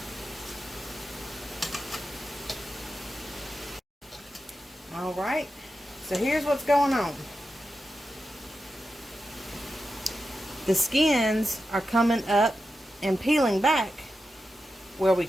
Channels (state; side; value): normal; both; correlation 0.90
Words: Alright, so here's what's going on. The skins are coming up and peeling back where we